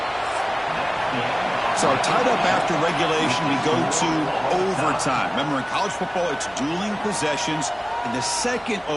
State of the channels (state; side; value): identical; both; correlation 1.00